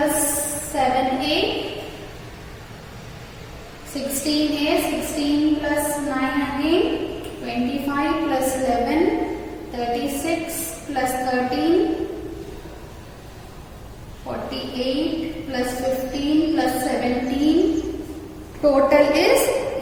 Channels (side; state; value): both; identical; correlation 1.00